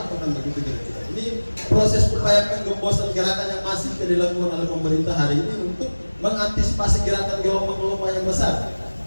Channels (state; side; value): inverted; both; correlation -1.00